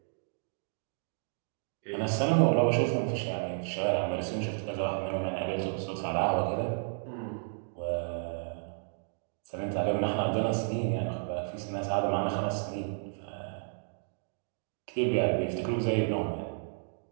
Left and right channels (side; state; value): left; silent; digital silence